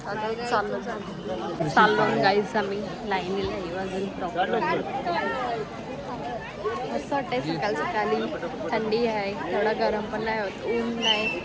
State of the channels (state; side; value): identical; both; correlation 1.00